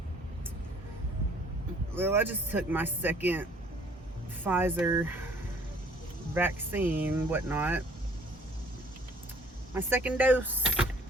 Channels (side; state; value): both; normal; correlation 0.57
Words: Well, I just took my second Pfizer vaccine, whatnot. My second dose.